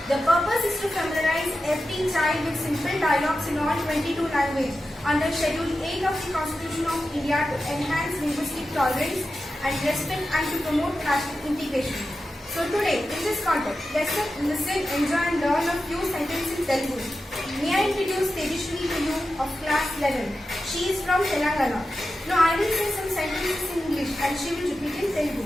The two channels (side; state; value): both; normal; correlation 0.92